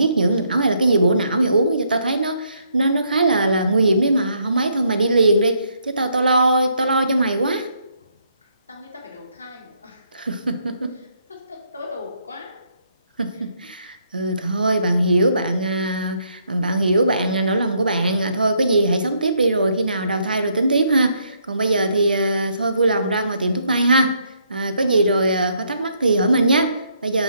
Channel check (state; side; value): inverted; both; correlation -0.72